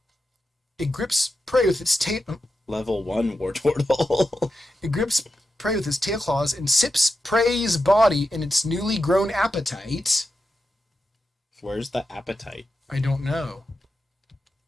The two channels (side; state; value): both; normal; correlation 0.89